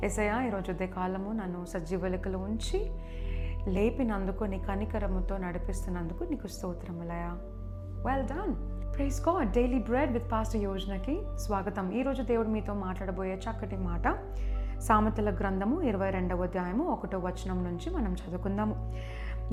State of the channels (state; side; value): identical; both; correlation 1.00